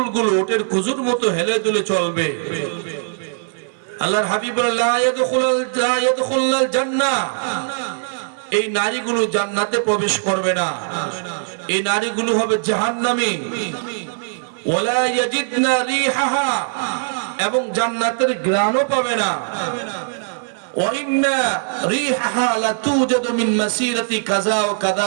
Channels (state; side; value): silent; left; 60 dB below the other